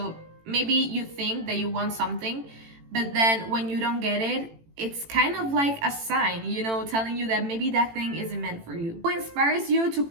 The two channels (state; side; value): late; left; 18 ms